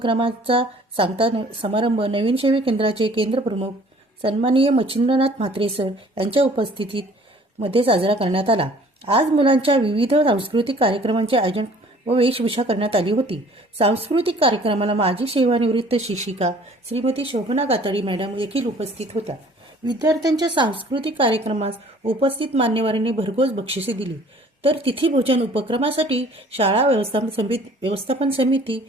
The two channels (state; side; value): normal; both; correlation 0.53